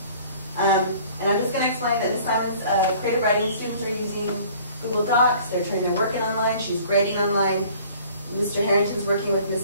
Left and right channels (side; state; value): both; inverted; correlation -0.51